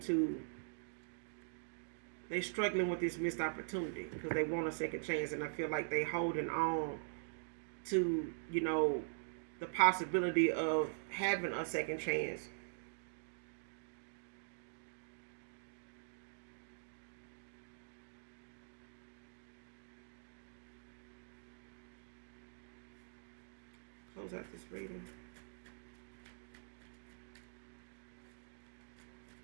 they struggling with this missed opportunity because they want a second chance. And I feel like they holding on to, you know, the possibility of having a second chance. Close out this reading.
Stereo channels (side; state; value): left; silent; digital silence